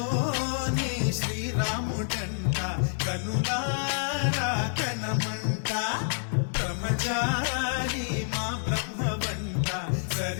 శ్రీరాముడంట, కనులారా కనమంట, బ్రహ్మచారి మా బ్రహ్మవంట,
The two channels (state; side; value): silent; right; digital silence